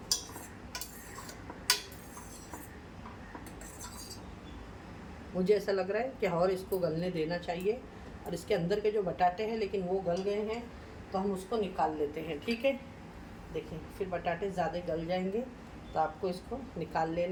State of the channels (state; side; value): identical; both; correlation 1.00